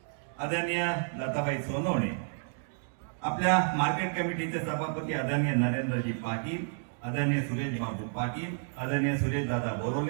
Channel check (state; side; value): silent; left; digital silence